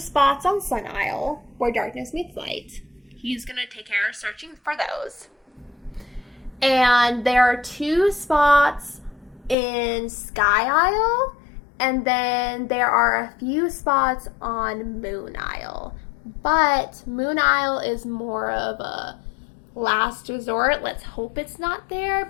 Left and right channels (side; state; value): right; drops out; at 9.6 s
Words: on Sun Isle where darkness meets light. He's going to take care of searching for those. And there are 2 spots in Sky Isle, and then there are a few spots on Moon Isle. But Moon Isle is more of a last resort. Let's hope it's not there